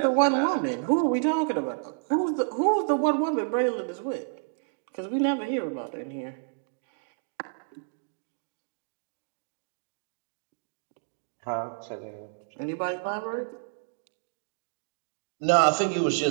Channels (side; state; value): left; silent; digital silence